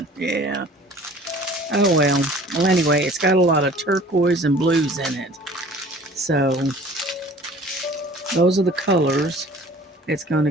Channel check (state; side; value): normal; both; correlation 0.48